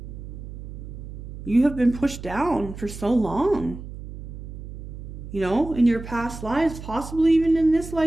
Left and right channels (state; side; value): noise; right; hum, 11 dB below the sound